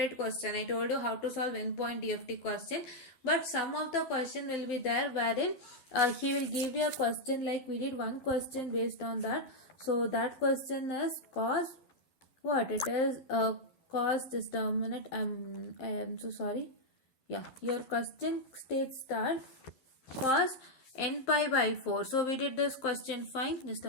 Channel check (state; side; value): late; right; 12 ms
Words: question. I told you how to solve endpoint DFT question. But some of the question will be there wherein he will give you a question like we did one question based on that. So that question is cos what? It is cos, just a minute, I am so sorry. Yeah, your question states that cos n pi by 4. So we did this question. Fine. Just